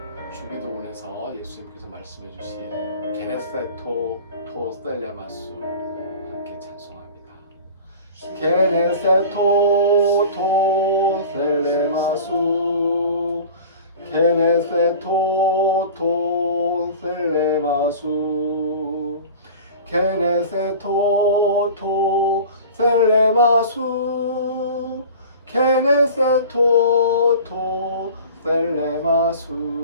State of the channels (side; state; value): both; inverted; correlation -0.40